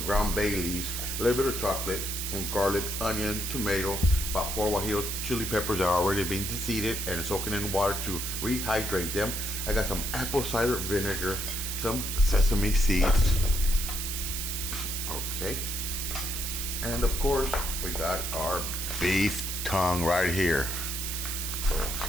ground bay leaves, a little bit of chocolate, some garlic, onion, tomato, about 4 guajillo chili peppers that are already being deseeded and soaking in water to rehydrate them. I got some apple cider vinegar, some sesame seeds. Okay. And of course, we got our beef tongue right here. So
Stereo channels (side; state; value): right; noise; hiss, 3 dB below the sound